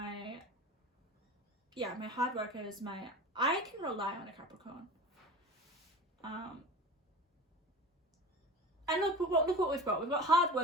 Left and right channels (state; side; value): normal; both; correlation 0.35